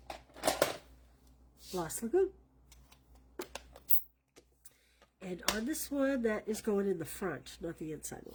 Lost Lagoon. And on this one, that is going in the front, not the inside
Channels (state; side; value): identical; both; correlation 1.00